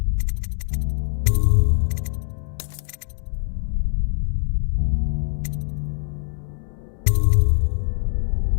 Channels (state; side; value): silent; right; 63 dB below the other